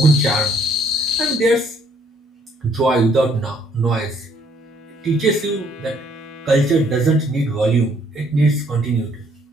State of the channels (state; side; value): normal; both; correlation 0.65